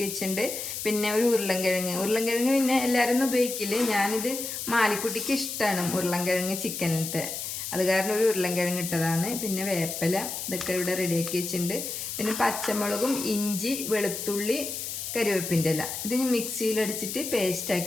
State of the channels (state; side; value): noise; left; hiss, 5 dB below the sound